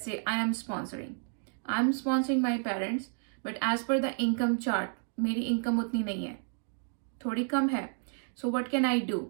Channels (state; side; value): silent; left; 57 dB below the other